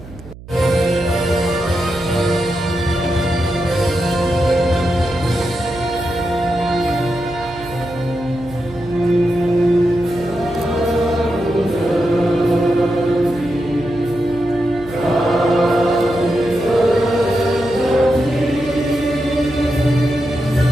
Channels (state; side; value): noise; right; hum, 17 dB below the sound